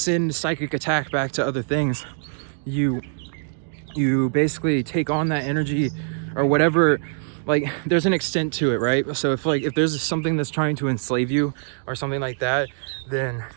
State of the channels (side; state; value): left; silent; digital silence